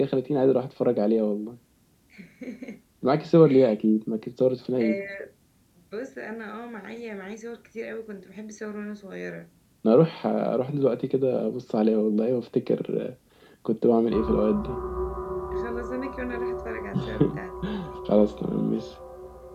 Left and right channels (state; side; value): identical; both; correlation 1.00